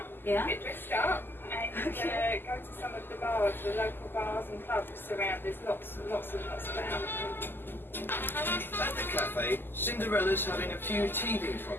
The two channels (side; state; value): right; late; 0.097 ms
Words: Yeah. get dressed up, and go to some of the bars, the local bars and clubs around. There's lots about. At the cafe, Cinderella's having a few teething